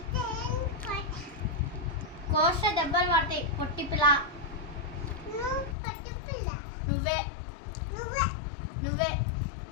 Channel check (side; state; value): right; drops out; at 5.8 s